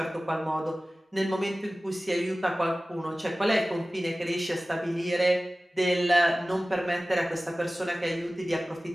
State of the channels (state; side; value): normal; both; correlation 0.97